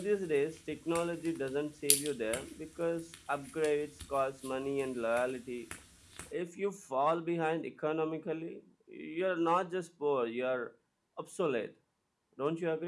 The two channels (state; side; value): identical; both; correlation 1.00